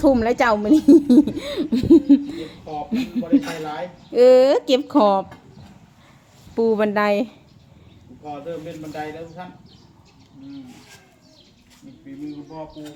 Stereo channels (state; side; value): identical; both; correlation 1.00